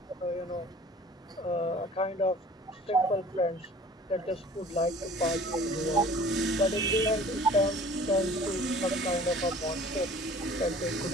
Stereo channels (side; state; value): both; normal; correlation 0.47